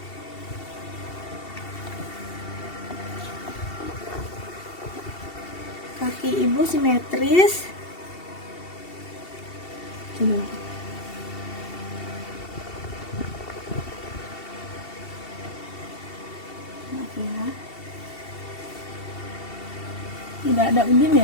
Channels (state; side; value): late; right; 2.7 ms